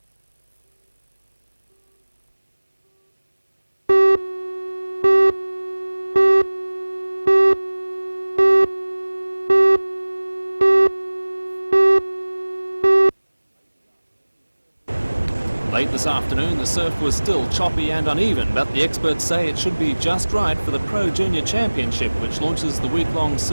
Late this afternoon, the surf was still choppy and uneven, but the experts say it should be just right for the Pro Junior Championship, which launches the week-long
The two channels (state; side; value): inverted; both; correlation -1.00